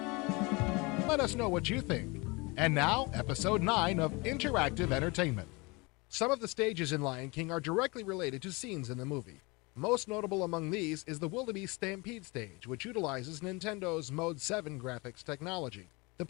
Let us know what you think. And now, Episode 9 of Interactive Entertainment. Some of the stages in Lion King are directly related to scenes in the movie. Most notable among these is the Wildebeest Stampede stage, which utilizes Nintendo's Mode 7 graphics technology. The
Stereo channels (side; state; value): right; quieter; 26.3 dB